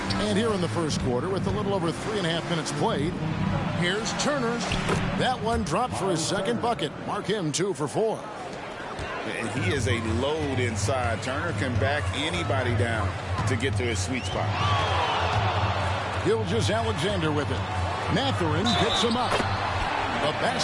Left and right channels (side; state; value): both; identical; correlation 1.00